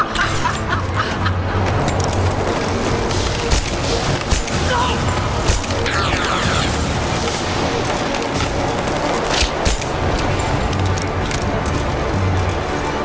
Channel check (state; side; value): identical; both; correlation 1.00